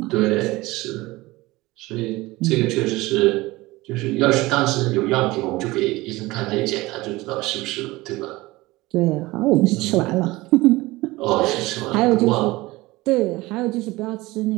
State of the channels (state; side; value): quieter; left; 20.2 dB